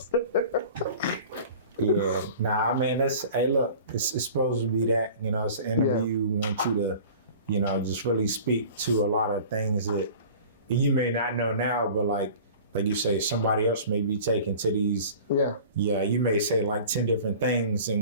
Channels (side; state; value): both; inverted; correlation -0.42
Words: Yeah, I mean, hey, look, it's supposed to be that, it's an interview. We want you to, just really speak to a lot of things that you may not know now, but like you say, somebody else may be taken to these. Yeah, you may say 10 different things in